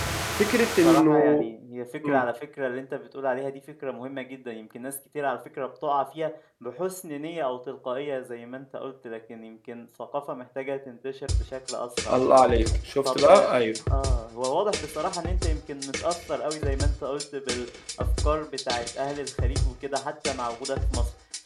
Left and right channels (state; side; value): identical; both; correlation 1.00